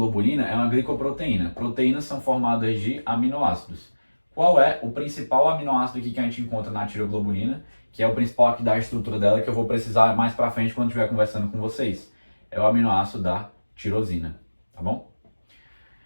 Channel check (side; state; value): both; inverted; correlation -1.00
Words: é uma glicoproteína. Proteínas são formadas de aminoácidos. Qual é o principal aminoácido aqui que a gente encontra na tireoglobulina, que é o principal aqui da estrutura dela, que eu vou precisar mais pra frente quando estiver conversando com vocês? É o aminoácido da tirosina, tá bom?